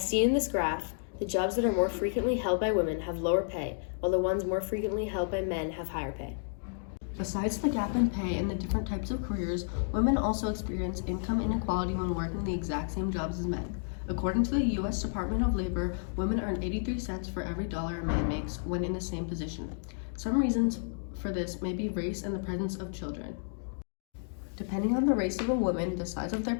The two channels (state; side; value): silent; right; digital silence